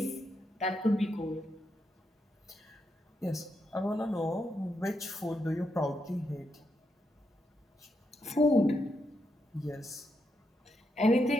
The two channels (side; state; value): both; normal; correlation 0.82